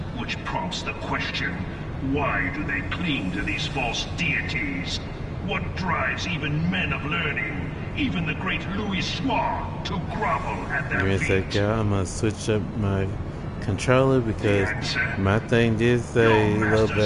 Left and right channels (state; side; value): identical; both; correlation 1.00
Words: which prompts the question, why do they cling to these false deities? What drives even men of learning, even the great Louis Soir, to grovel at their Give me a feet? sec, y'all. I'm gonna switch up my controller because my thing did say low